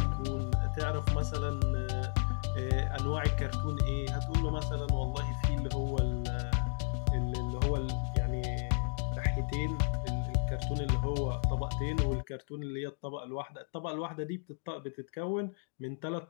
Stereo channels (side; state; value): right; silent; digital silence